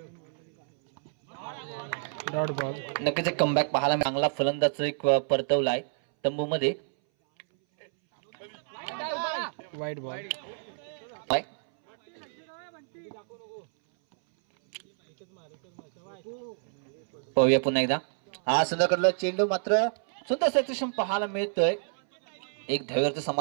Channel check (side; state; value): left; silent; 59 dB below the other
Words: Dot ball. नक्कीच एक कमबॅक पाहायला चांगला फलंदाज एक परतवलाय तंबू मध्ये. वाईट बॉल. पाहूया पुन्हा एकदा. हा सुंदर चेंडू मात्र सुंदर सेक्शन पाहायला मिळतोय. एक धावेवरचं